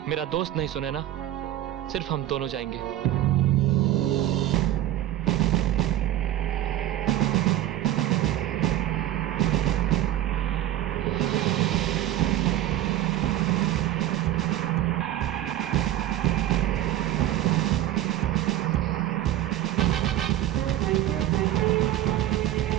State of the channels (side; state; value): left; quieter; 13.2 dB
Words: मेरा दोस्त नहीं सुने ना, सिर्फ हम दोनों जाएंगे।